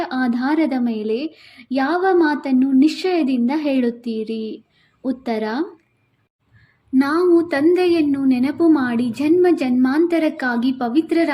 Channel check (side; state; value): both; identical; correlation 1.00